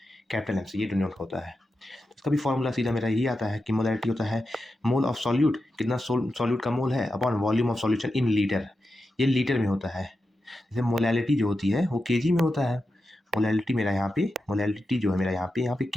Capital M से ये डिनोट होता है। इसका भी फॉर्मूला सीधा मेरा यही आता है कि मोलैरिटी होता है मोल ऑफ सॉल्यूट, कितना सॉल्यूट का मोल है, upon volume of solution in litre. ये लीटर में होता है। जैसे मोलैलिटी जो होती है वो केजी में होता है। मोलैलिटी मेरा यहाँ पे, मोलैलिटी जो है मेरा यहाँ पे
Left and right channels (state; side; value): normal; both; correlation 0.90